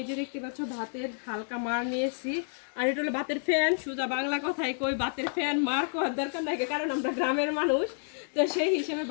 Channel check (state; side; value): silent; right; digital silence